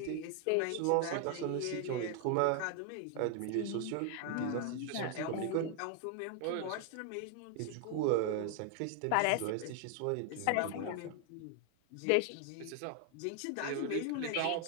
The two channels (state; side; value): different; both; correlation 0.00